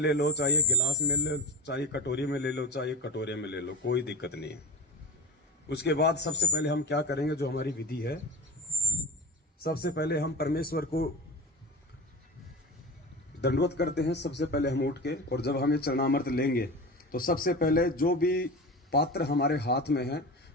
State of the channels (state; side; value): normal; both; correlation 0.27